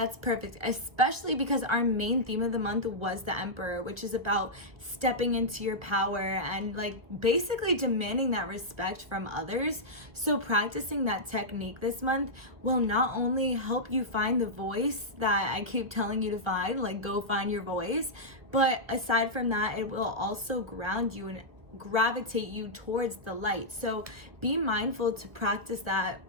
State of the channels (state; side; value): late; left; 1.6 ms